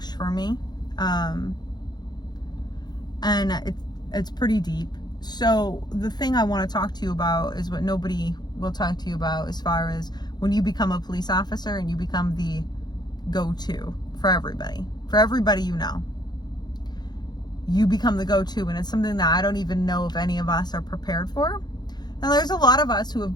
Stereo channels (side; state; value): right; late; 0.20 ms